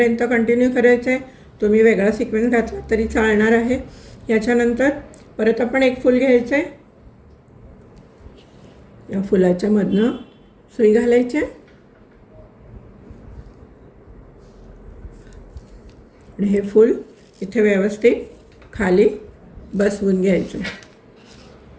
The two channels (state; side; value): identical; both; correlation 1.00